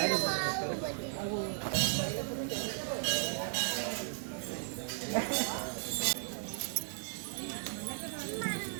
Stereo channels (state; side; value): silent; left; digital silence